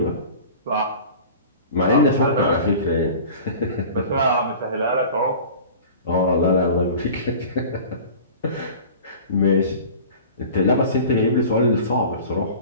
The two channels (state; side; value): inverted; both; correlation -0.40